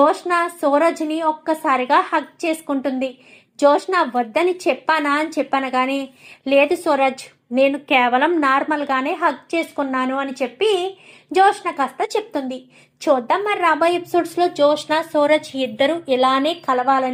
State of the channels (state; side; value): identical; both; correlation 1.00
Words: సూరజ్ని ఒక్కసారిగా హగ్ చేసుకుంటుంది. జోష్న వద్దని చెప్పానా అని చెప్పాను కానీ లేదు సూరజ్, నేను కేవలం నార్మల్గానే హగ్ చేసుకున్నాను అని చెప్పి జోష్న కాస్త చెప్తుంది. చూద్దాం మరి రాబోయే ఎపిసోడ్స్లో జోష్న సూరజ్ ఇద్దరు ఇలానే